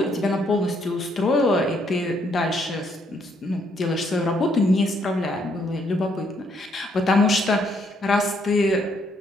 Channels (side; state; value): both; normal; correlation 0.71